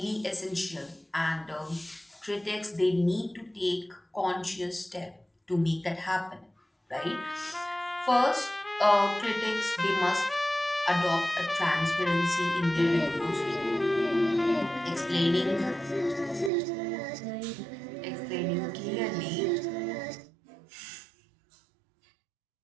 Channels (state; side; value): drops out; left; at 16.5 s